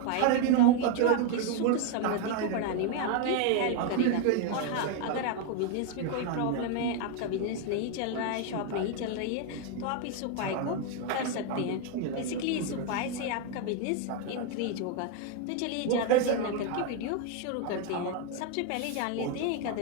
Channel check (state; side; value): different; both; correlation 0.01